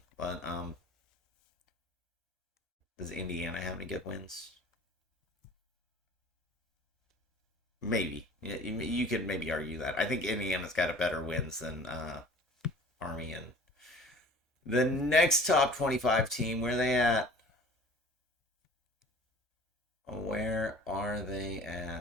But does Indiana have any good wins? Maybe. You could maybe argue that. I think Indiana's got a better wins than Army. And the next top 25 team, where are they at? Where are they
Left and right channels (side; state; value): both; normal; correlation 0.47